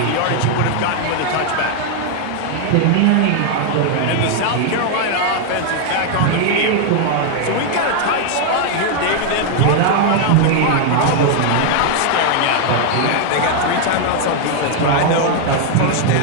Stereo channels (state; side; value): different; both; correlation 0.00